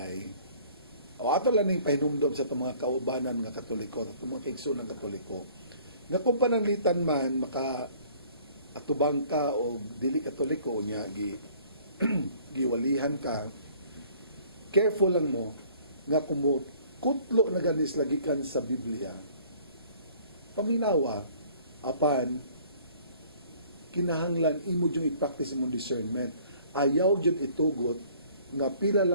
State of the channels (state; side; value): inverted; both; correlation -0.54